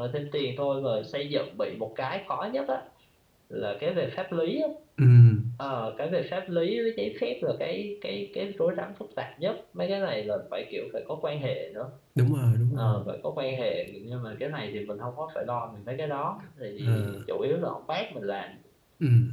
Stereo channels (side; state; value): both; identical; correlation 1.00